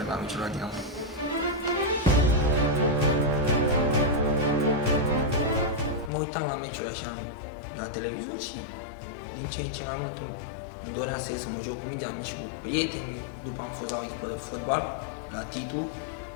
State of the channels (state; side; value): drops out; right; at 6.1 s